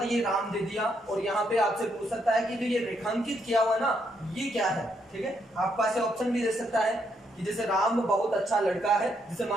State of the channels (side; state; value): both; normal; correlation 0.76